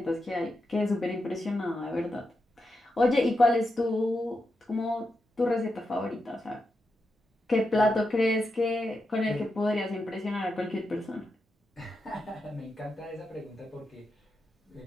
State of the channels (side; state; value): both; normal; correlation 0.87